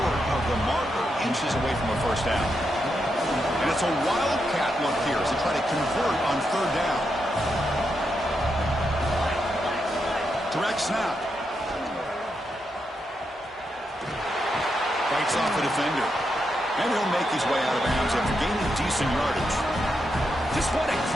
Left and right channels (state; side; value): normal; both; correlation 0.83